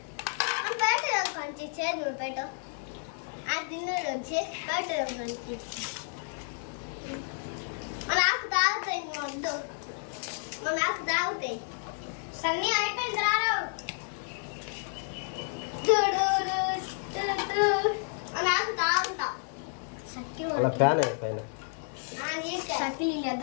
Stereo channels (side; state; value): right; silent; 57 dB below the other